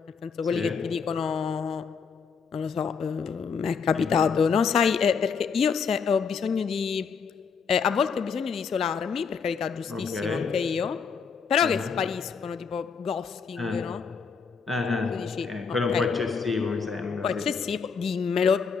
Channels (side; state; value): right; quieter; 5.8 dB